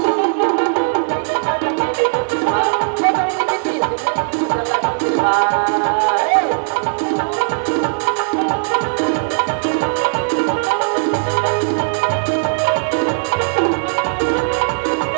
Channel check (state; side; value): silent; left; digital silence